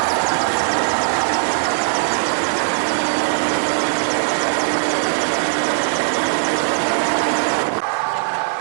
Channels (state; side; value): silent; left; 62 dB below the other